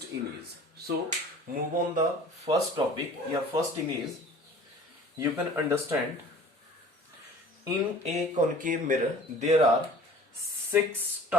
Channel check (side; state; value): both; normal; correlation 0.46